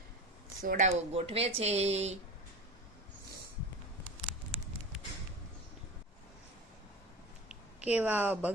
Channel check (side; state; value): both; normal; correlation 0.30